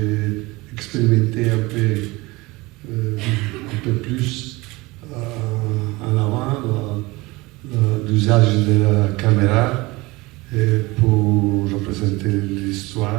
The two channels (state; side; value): quieter; left; 22.4 dB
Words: expérimenté un peu plus en avant l'usage de la caméra pour représenter